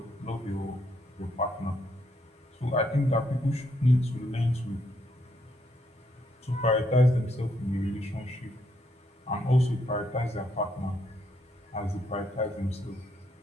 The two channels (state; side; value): normal; both; correlation 0.75